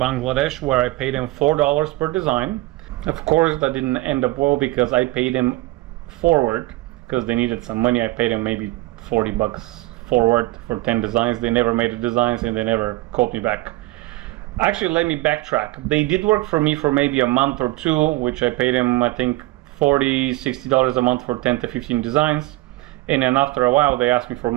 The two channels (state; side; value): quieter; left; 19.8 dB